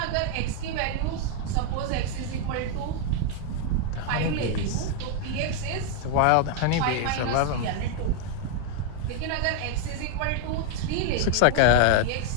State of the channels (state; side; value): different; both; correlation 0.00